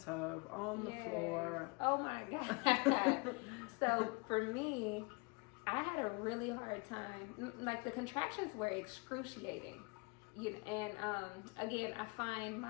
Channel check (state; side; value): quieter; right; 29.3 dB